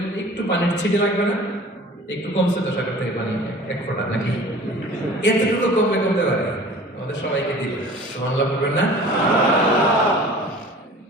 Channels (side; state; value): both; normal; correlation 0.44